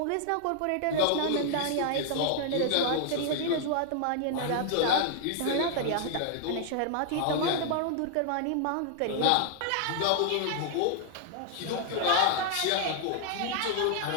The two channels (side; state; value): both; different; correlation 0.00